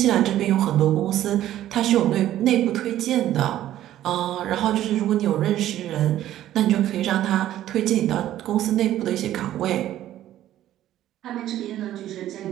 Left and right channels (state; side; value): quieter; left; 12.9 dB